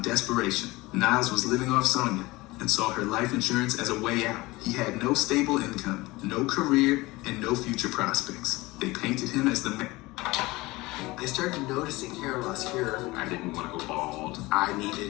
desperation. Niles was living off Sonia and saw her life insurance as a way out. He had no stable income, no career, and no future prospects. They painted him as the man. I started noticing hair loss here. I didn't want to go bald. I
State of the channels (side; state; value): right; quieter; 21.1 dB